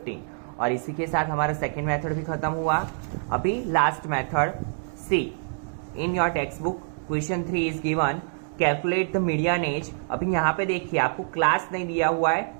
और इसी के साथ हमारा सेकेंड मेथड भी खत्म हुआ। अभी last method C. In your text book question 3 is given calculate the median age. अभी यहाँ पे देखिए आपको क्लास नहीं दिया हुआ है,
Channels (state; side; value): silent; left; digital silence